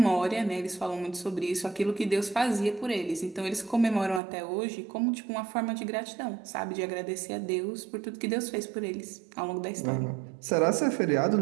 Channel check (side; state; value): left; drops out; at 4.2 s